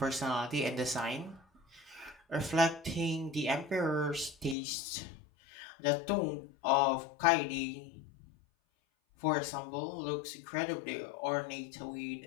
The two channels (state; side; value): drops out; right; at 4.5 s